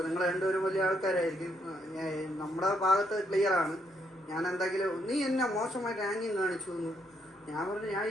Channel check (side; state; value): both; normal; correlation 0.74